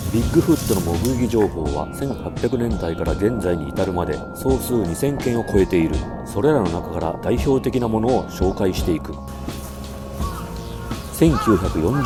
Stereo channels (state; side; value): identical; both; correlation 1.00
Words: ビッグフットの目撃情報は1800年代から現在に至るまで総数2000件を超えている。それらの中から代表的なものを紹介していく。